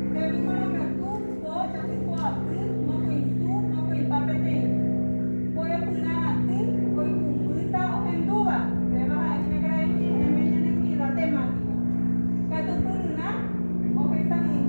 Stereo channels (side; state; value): both; inverted; correlation -1.00